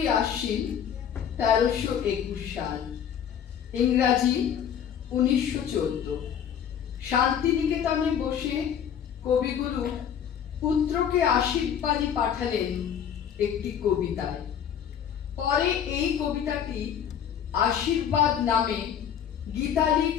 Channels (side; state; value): right; quieter; 8.7 dB